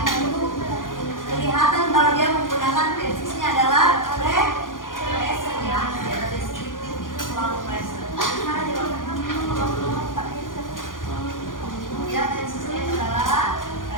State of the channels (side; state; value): right; late; 0.90 ms